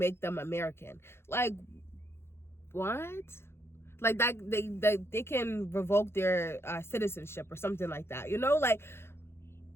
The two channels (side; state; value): right; late; 0.12 ms